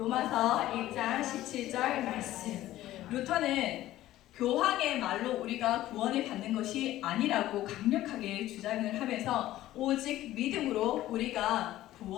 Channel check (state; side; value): quieter; right; 14.7 dB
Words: 1장 17절 말씀. 루터는 교황의 말로 우리가 구원을 받는 것이 아니라고 강력하게 주장을 하면서 오직 믿음으로 우리가